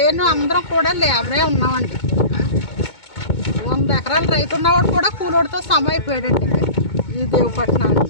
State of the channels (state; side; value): late; right; 2.2 ms